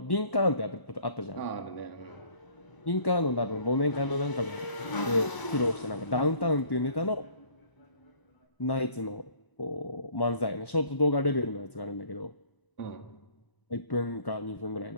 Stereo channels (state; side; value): late; right; 1.0 ms